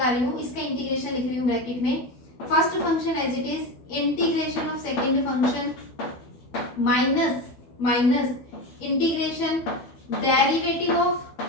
रही हूँ, इसका इंटीग्रेशन लिख रही हूँ ब्रैकेट में। First function as it is integration of second function minus integration derivative of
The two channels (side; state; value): right; late; 12 ms